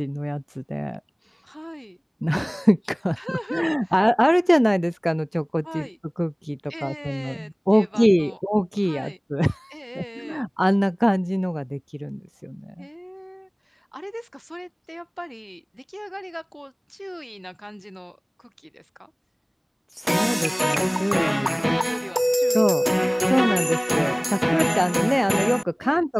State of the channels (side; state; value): both; identical; correlation 1.00